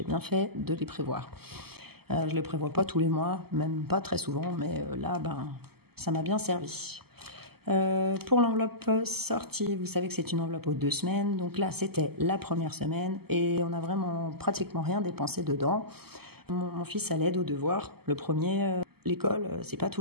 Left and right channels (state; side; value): late; left; 0.96 ms